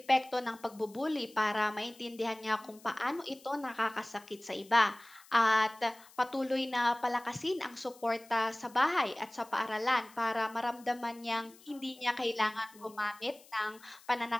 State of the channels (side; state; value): left; noise; hiss, 24 dB below the sound